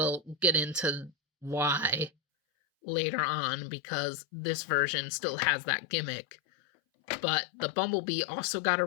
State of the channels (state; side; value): drops out; right; at 2.1 s